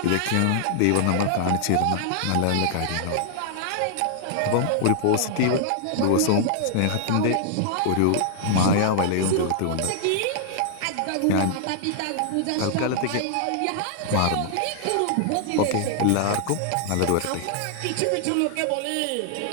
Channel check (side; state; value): both; different; correlation -0.01